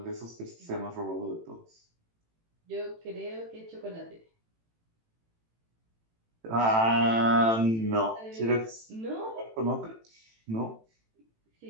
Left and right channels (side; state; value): left; late; 18 ms